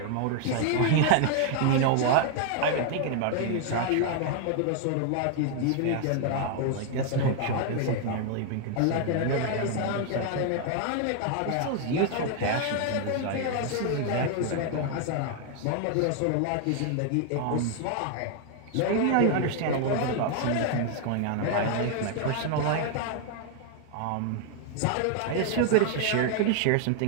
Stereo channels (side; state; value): both; different; correlation 0.00